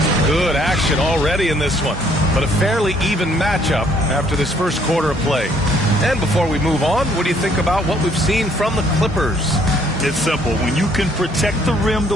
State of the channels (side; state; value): both; normal; correlation 0.64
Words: Good action already in this one, but a fairly even matchup after this first quarter of play. And before we move on, what do you think about what we've seen from the Clippers? It's simple. When you can protect the rim